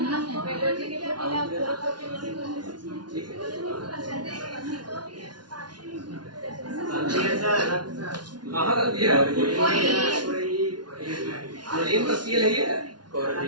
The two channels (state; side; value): late; left; 0.70 ms